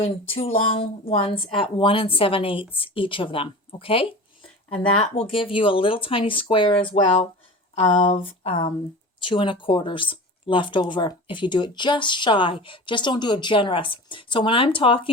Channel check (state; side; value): normal; both; correlation 0.35